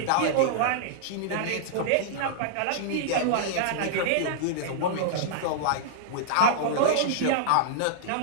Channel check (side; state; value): both; different; correlation -0.01